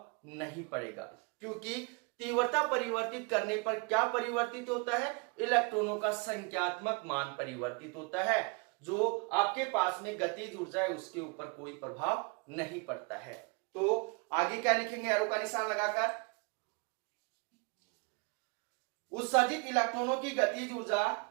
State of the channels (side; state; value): left; quieter; 31.3 dB